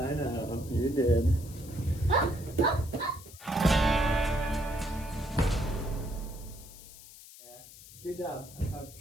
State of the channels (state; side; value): noise; left; hiss, 18 dB below the sound